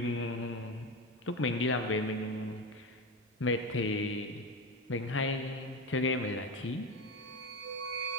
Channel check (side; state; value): both; normal; correlation 0.20